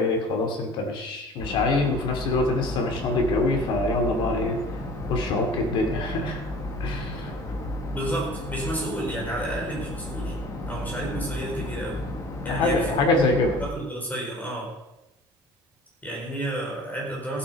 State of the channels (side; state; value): both; normal; correlation 0.45